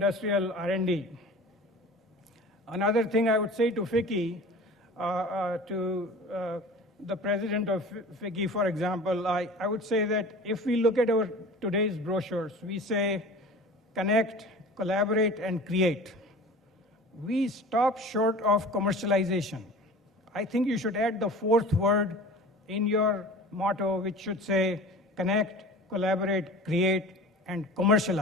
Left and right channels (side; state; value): both; normal; correlation 0.40